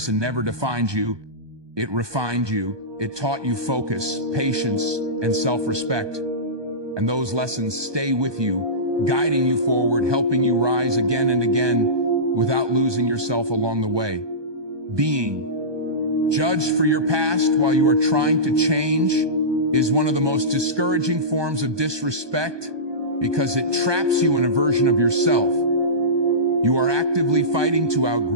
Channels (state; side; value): late; left; 1.2 ms